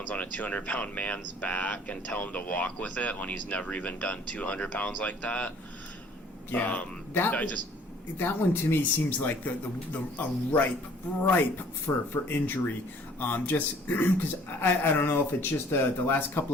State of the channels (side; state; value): both; normal; correlation 0.55